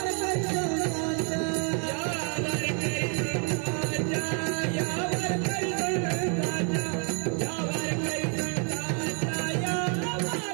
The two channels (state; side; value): quieter; left; 40.0 dB